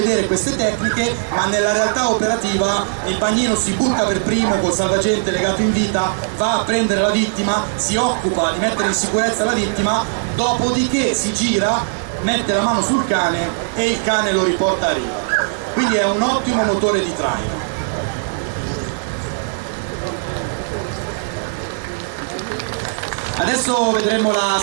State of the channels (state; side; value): silent; left; digital silence